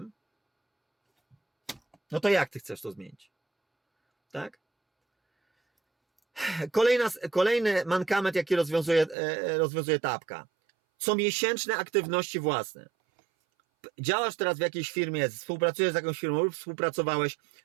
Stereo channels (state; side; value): drops out; left; at 9.2 s